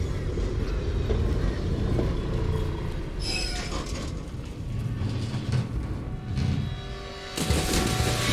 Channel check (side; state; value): both; identical; correlation 1.00